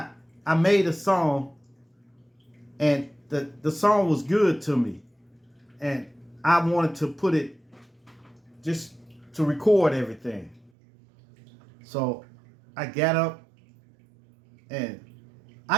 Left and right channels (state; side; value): drops out; left; at 10.7 s